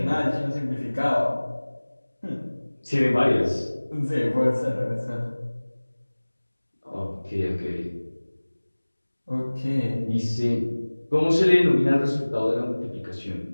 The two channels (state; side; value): inverted; both; correlation -1.00